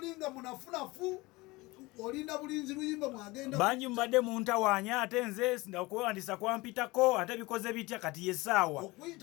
munafunafu olinda bulinzi luyimba mwagenda bangi mbadde muntawaanya ate nze okuwandisa kwampitako ate bikoze bitya kati yesaawa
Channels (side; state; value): right; quieter; 22.2 dB